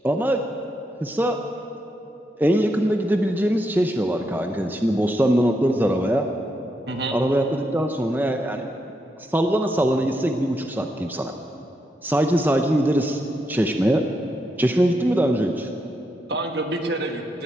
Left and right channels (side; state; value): both; normal; correlation 0.81